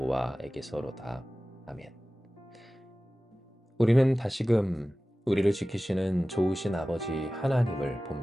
아멘. 우리는 다시금 우리를 지키시는 좋으신 아버지 하나님을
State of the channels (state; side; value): normal; both; correlation 0.97